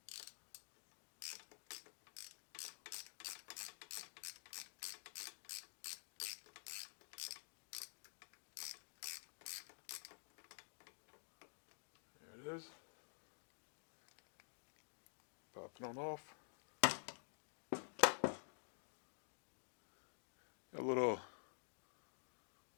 there it is. Pop it on off. A little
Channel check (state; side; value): silent; right; digital silence